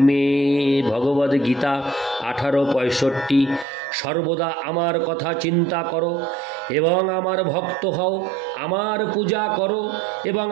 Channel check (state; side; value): drops out; left; at 3.7 s